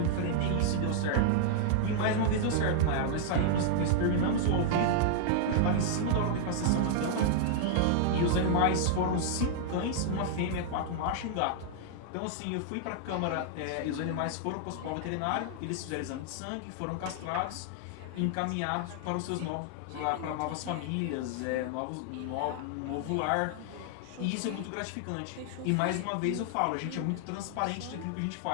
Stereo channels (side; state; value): both; different; correlation -0.01